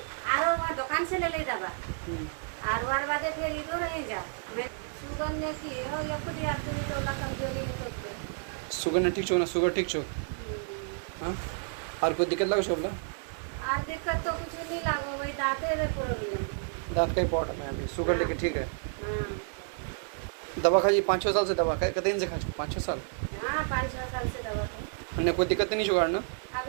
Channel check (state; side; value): silent; left; digital silence